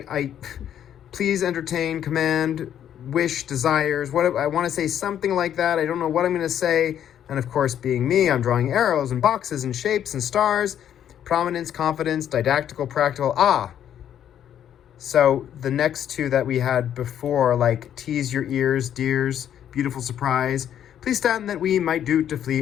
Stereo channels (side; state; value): right; quieter; 10.0 dB